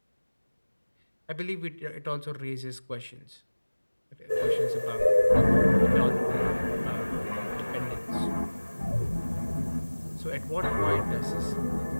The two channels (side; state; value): both; inverted; correlation -1.00